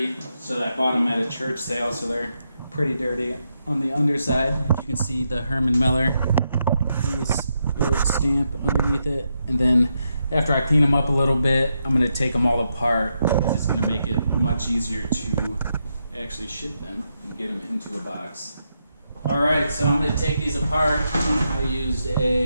so I bought them at a church sale, so they're pretty dirty on the underside. You can see the Herman Miller stamp underneath it. And then after I clean them up a little bit, I'm gonna take them all apart. It's gonna make it much easier to actually ship them and get them into a box. Alright, so I'm going to take these apart. I used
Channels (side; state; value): both; inverted; correlation -0.83